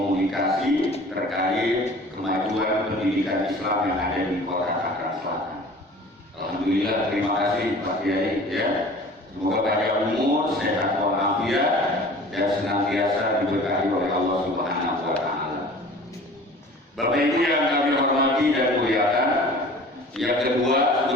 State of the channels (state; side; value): normal; both; correlation 0.44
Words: terkait kemajuan pendidikan Islam yang ada di Kota Tangerang Selatan. Alhamdulillah, terima kasih Pak Kiai ya. Semoga panjang umur, sehat walafiat, dan senantiasa diberkahi oleh Allah Subhanahu wa Ta'ala. Bapak Ibu yang kami hormati dan muliakan, yang kedua